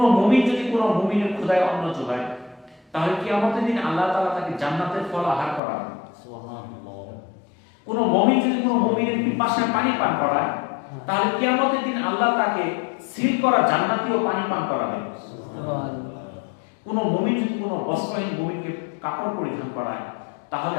মুমিন যদি কোন মুমিনের ক্ষুধায় অন্ন যোগায়, তাহলে কিয়ামতের দিন আল্লাহ তাআলা তাকে জান্নাতের ফল আহার করাবেন। সুবহানাল্লাহ। কোন মুমিন যদি কোন মুমিনের পিপাসায় পানি পান করায়, তাহলে কিয়ামতের দিন আল্লাহ তাকে সিল করা জান্নাতীয় পানি পান করাবেন। সুবহানাল্লাহ। কোন মুমিন যদি কোন বস্ত্রহীন মুমিনকে কাপড় পরিধান করায়, তাহলে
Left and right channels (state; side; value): drops out; right; at 5.6 s